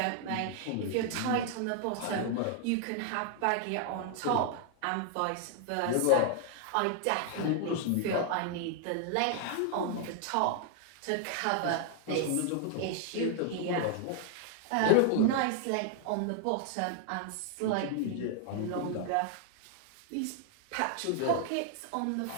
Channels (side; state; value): both; different; correlation 0.00